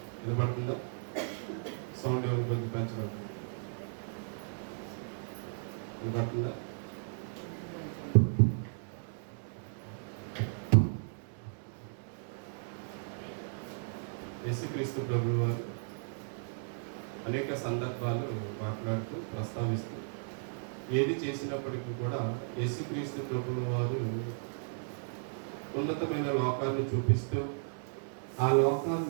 వినపడుతుందా? సౌండ్ ఎవరు కొంచెం పెంచబడుతుంది. వినపడుతుందా? యేసుక్రీస్తు ప్రభువు వారు అనేక సందర్భాలు మాట్లాడుతూ ప్రస్తావిస్తూ ఏది చేసినప్పటికీ కూడా యేసుక్రీస్తు ప్రభువు వారు ఉన్నతమైన లోకాన్ని చూపిస్తూ ఆ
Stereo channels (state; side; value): silent; left; digital silence